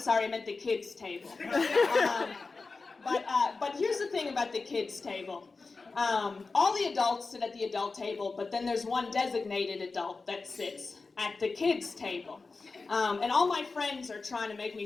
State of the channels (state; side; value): quieter; right; 4.0 dB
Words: I meant the kids table. But here's the thing about the kids table. All the adults sit at the adult table, but then there's one designated adult that sits at the kids table. And all my friends are trying to make